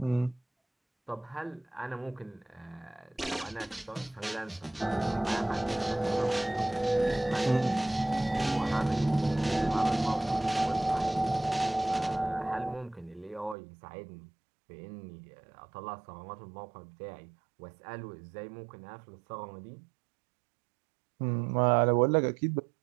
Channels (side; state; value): left; drops out; at 13.6 s